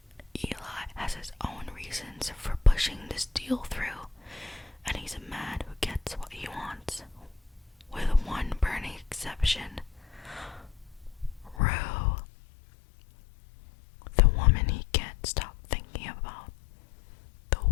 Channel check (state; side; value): drops out; right; at 11.6 s